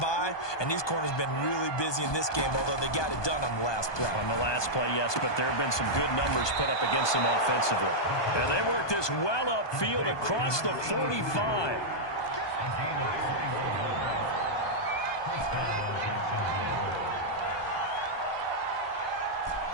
and these corners have been really busy in this game, although they got it done on the last play. On the last play, yes, but there have been some good numbers put up against them offensively. And they work this well upfield across the 45.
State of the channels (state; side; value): late; right; 1.2 ms